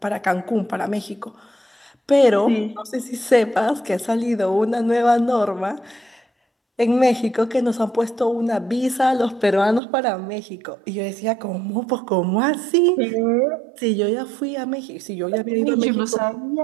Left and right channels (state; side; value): drops out; left; at 9.8 s